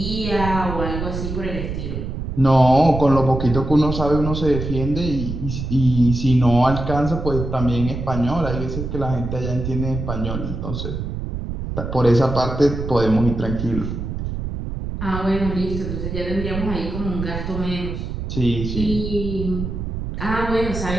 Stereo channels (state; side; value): noise; right; rumble, 5 dB below the sound